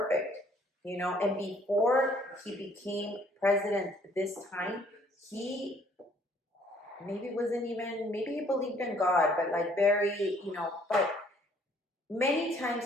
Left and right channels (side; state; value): both; normal; correlation 0.61